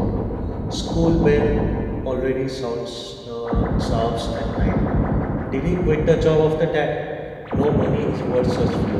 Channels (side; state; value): both; identical; correlation 1.00